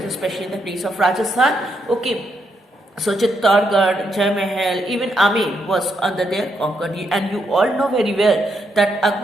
especially in the place of Rajasthan. Okay, so Chittorgarh, Jai Mahal, even Amer was under their conquer. And you all know very well that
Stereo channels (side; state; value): both; normal; correlation 0.78